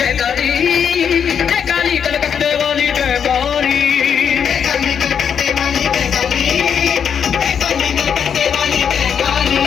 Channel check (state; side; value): quieter; right; 7.5 dB